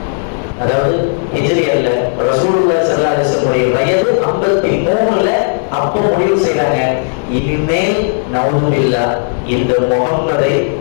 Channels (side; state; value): right; silent; digital silence